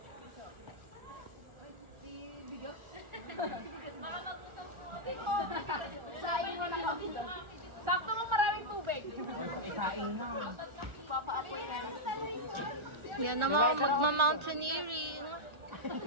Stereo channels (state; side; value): late; left; 1.4 ms